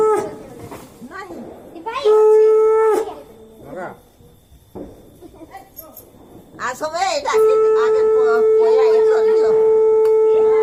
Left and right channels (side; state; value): both; identical; correlation 1.00